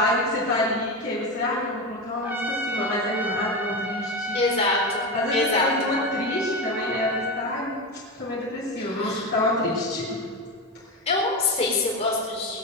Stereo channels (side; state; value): both; normal; correlation 0.18